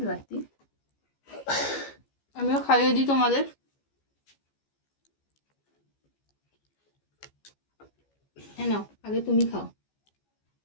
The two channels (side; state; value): right; late; 15 ms